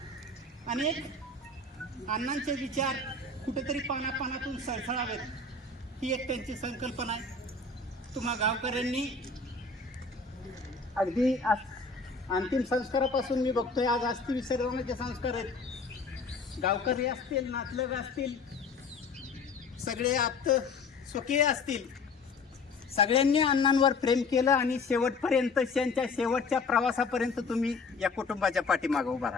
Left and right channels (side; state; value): right; quieter; 3.9 dB